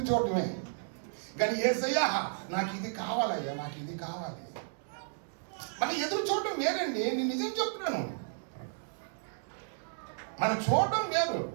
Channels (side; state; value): left; silent; digital silence